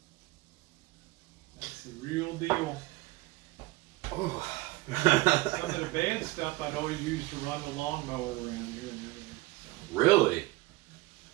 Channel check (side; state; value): left; quieter; 20.7 dB